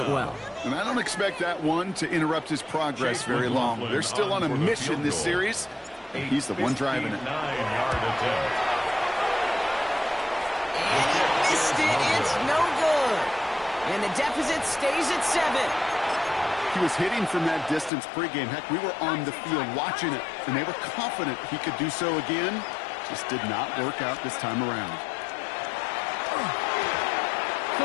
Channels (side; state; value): right; drops out; at 17.9 s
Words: well. And I don't expect that one to interrupt his progress very long. They're still on a mission this series, and he's the one driving it. And he missed it. It's no good. And the deficit stays at 7. He was hitting from that distance pregame. Heck, we were on the field watching it, and they were confident he could do so again. Just did not work out this time around.